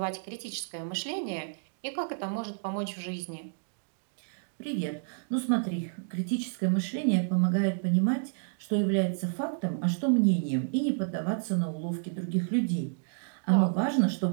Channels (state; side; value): silent; left; digital silence